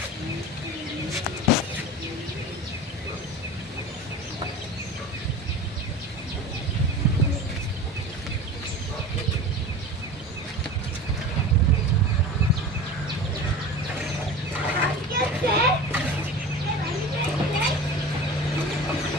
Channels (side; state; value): both; normal; correlation 0.35